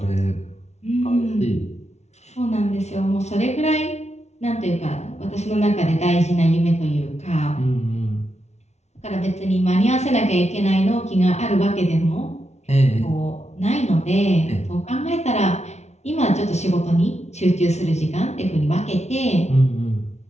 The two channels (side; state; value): right; late; 0.32 ms